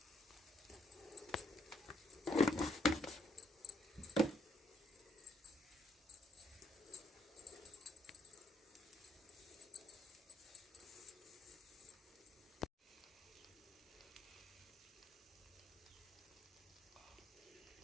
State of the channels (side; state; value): both; normal; correlation 0.70